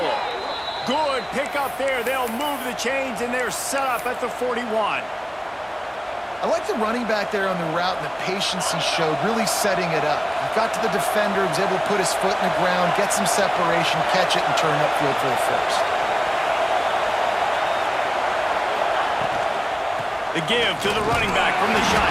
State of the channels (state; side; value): identical; both; correlation 1.00